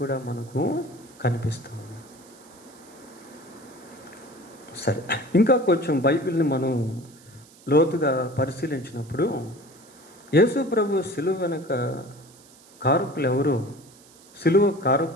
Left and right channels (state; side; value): noise; right; hiss, 25 dB below the sound